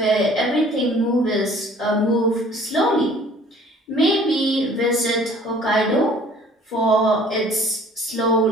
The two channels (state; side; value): normal; both; correlation 0.53